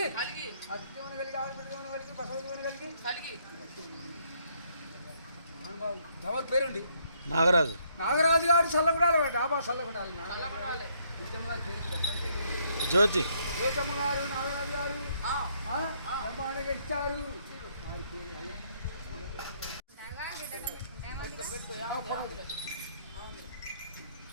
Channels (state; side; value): inverted; both; correlation -0.69